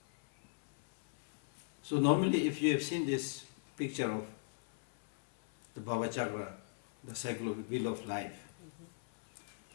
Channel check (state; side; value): silent; right; 52 dB below the other